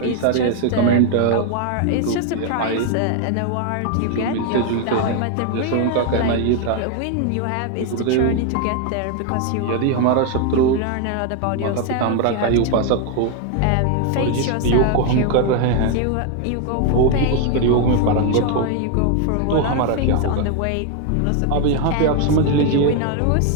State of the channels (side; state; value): both; different; correlation 0.01